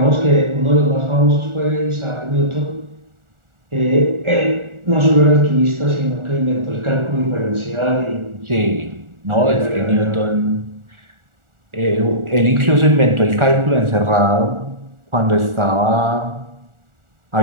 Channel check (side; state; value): left; late; 1.4 ms